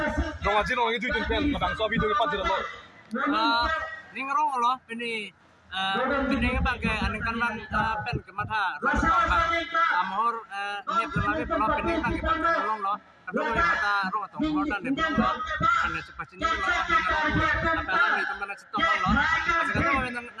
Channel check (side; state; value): both; identical; correlation 1.00